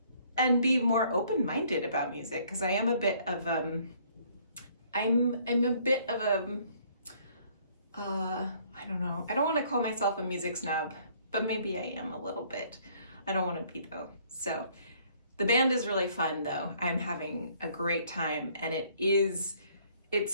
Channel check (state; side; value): inverted; both; correlation -0.62